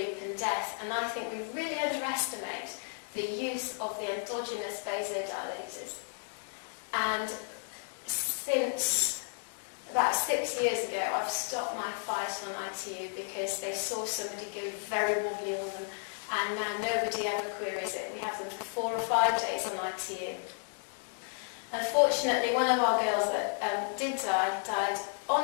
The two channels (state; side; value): silent; right; 56 dB below the other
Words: and death. And I think we really underestimate the use of the endogenous vasodilators. And since about 6 years ago, I've stopped my fight on ITU because they saw somebody go very wobbly on them, and now nobody ever queries it. We have them for 4 or 5 days on ITU. Unfortunately, one of our girls that did die died on